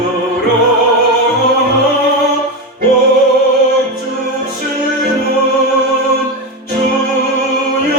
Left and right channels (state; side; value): normal; both; correlation 0.14